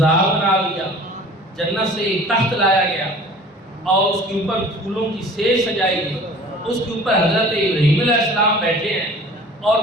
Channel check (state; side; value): normal; both; correlation 0.46